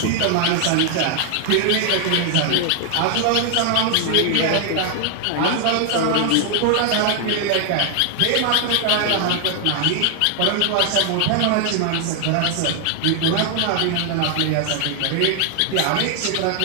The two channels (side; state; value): both; different; correlation 0.00